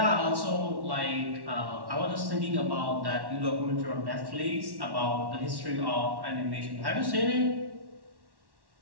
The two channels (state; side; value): late; left; 1.1 ms